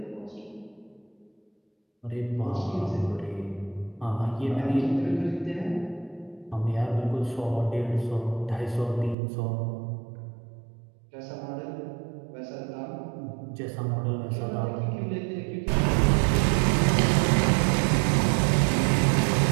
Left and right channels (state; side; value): drops out; left; at 9.2 s